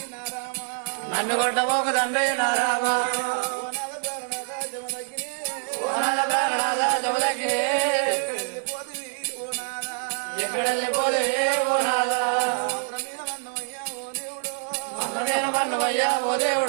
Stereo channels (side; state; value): left; silent; 60 dB below the other